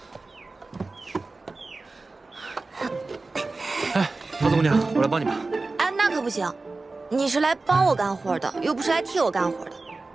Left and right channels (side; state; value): left; quieter; 3.5 dB